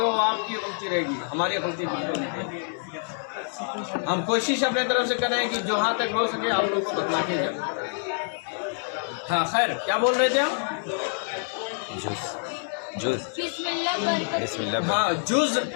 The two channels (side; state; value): right; silent; 61 dB below the other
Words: वो आपकी गलती रहेगी, हमारी गलती बिल्कुल नहीं। हम कोशिश अपने तरफ से करें कि जो हाँ तक हो सके आप लोग को बतला के जाए। हाँ खैर, क्या बोल रहे थे हम? बिस्मिल्लाह। हाँ